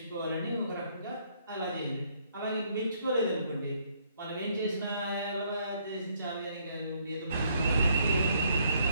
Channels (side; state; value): both; inverted; correlation -0.69